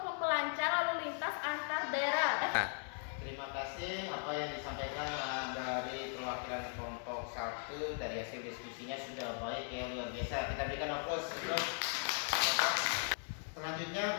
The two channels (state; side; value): silent; right; 52 dB below the other